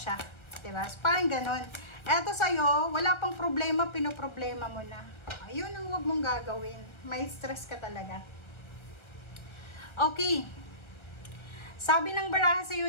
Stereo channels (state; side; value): late; right; 1.3 ms